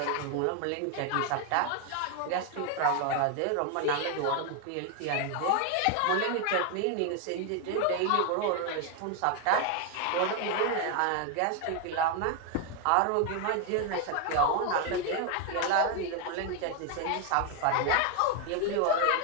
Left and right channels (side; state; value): both; different; correlation 0.01